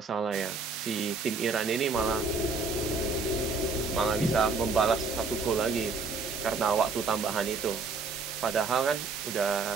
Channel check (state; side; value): quieter; left; 4.2 dB